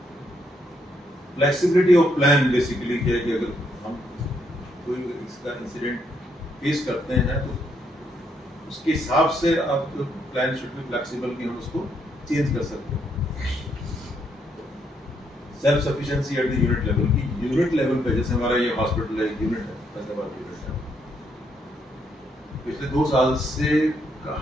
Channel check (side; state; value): both; normal; correlation 0.74